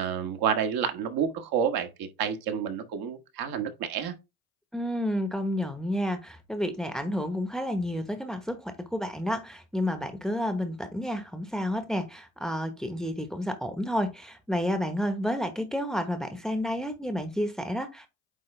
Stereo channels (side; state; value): both; normal; correlation 0.62